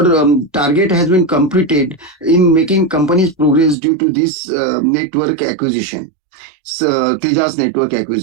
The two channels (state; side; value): drops out; left; at 3.8 s